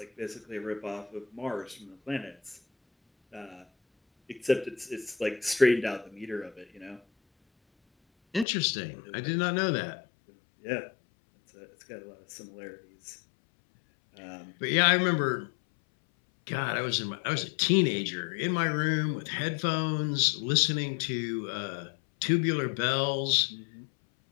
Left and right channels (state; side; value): drops out; right; at 8.5 s